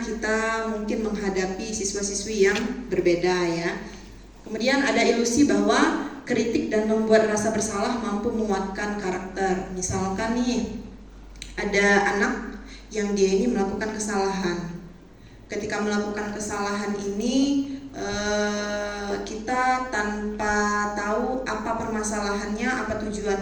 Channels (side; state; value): both; identical; correlation 1.00